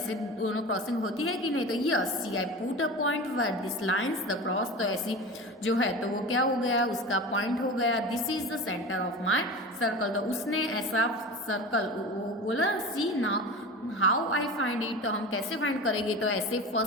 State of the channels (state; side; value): normal; both; correlation 0.30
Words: दोनों क्रॉसिंग होती है कि नहीं। तो yes see I put a point where this lines the cross, तो ऐसी जो है तो वो क्या हो गया, उसका पॉइंट हो गया। This is the centre of my circle, तो उसने ऐसा सर्कल बोला। See now how I find it, तो हम कैसे फाइंड करेंगे, तो ऐसे